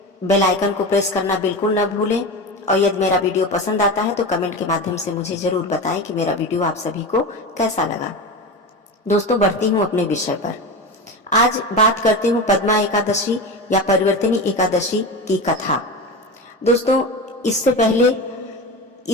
बेल आइकन को प्रेस करना बिल्कुल न भूलें। और यदि मेरा वीडियो पसंद आता है तो कमेंट के माध्यम से मुझे जरूर बताएं कि मेरा वीडियो आप सभी को कैसा लगा। दोस्तों, बढ़ती हूँ अपने विषय पर। आज बात करती हूँ पद्मा एकादशी या परिवर्तनी एकादशी की कथा। दोस्तों, इससे पहले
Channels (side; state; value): both; normal; correlation 0.24